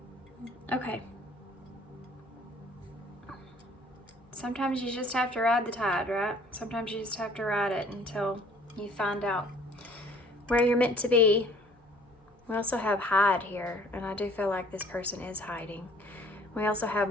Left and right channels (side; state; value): both; normal; correlation 0.55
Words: Okay. Sometimes you just have to ride the tide, right? Sometimes you just have to ride it until you find out where you're meant to be. We also have hide here, and I do feel like this person is hiding. We also have